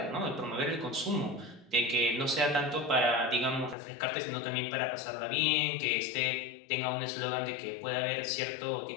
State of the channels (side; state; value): right; drops out; at 3.8 s